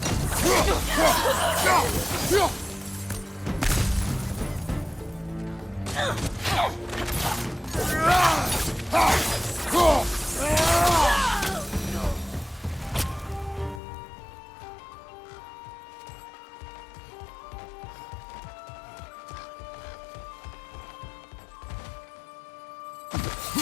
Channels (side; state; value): right; drops out; at 13.8 s